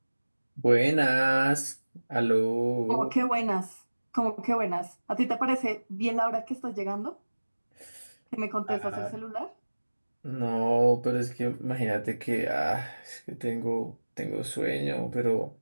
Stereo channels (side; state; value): both; inverted; correlation -1.00